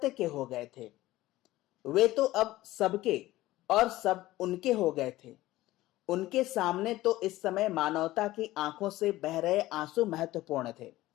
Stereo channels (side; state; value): right; quieter; 16.8 dB